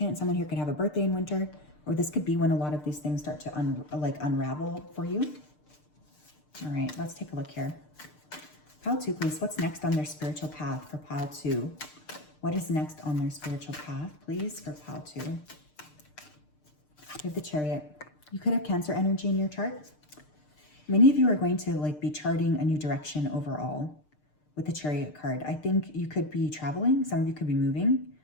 Someone here could have a birthday in winter, or this could be when a lot of these things start to unravel for you. All right, let's take a look here. Pile 2, please. What's next on their spiritual path for pile 2? What is next on their spiritual path, please, for pile 2? We have the Chariot. You could have Cancer energy in your chart. Many of you are going to be charting a new direction overall with the Chariot card. I think you could be traveling. Some of you could be moving.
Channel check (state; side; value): late; right; 6.7 ms